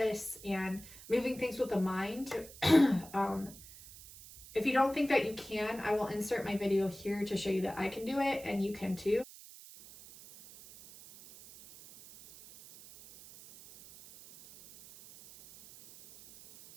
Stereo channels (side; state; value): right; noise; hiss, 18 dB below the sound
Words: and moving things with the mind. If you don't think that you can, I will insert my video here to show you that I can do it and you can too.